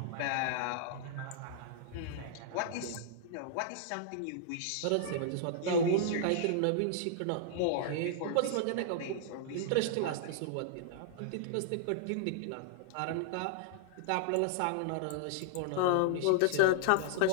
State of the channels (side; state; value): both; different; correlation -0.01